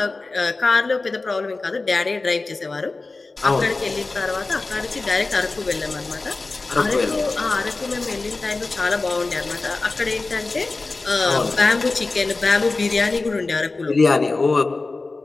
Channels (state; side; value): quieter; right; 3.6 dB